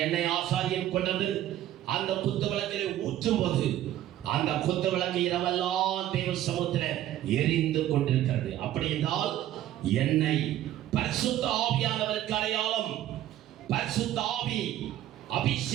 எண்ணெய் ஆசாரியன் கொண்டது அந்த குத்து விளக்கிலே ஊற்றும் போது அந்த குத்து விளக்கு இரவெல்லாம் தேவ சமூகத்தில் எரிந்து கொண்டிருக்கிறது. அப்படி என்றால் எண்ணெய் பரிசுத்த ஆவியானவருக்கு அடையாளம். பரிசுத்த ஆவி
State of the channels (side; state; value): left; quieter; 12.9 dB